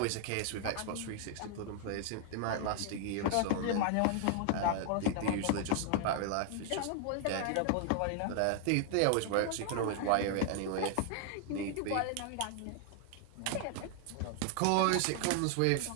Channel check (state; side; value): different; both; correlation 0.00